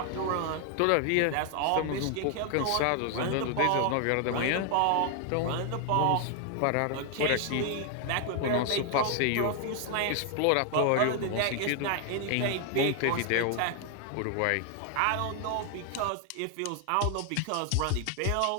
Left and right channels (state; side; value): different; both; correlation 0.00